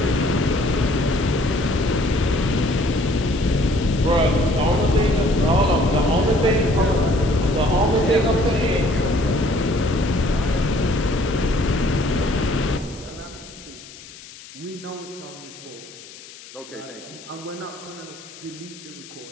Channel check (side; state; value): left; noise; hiss, 18 dB below the sound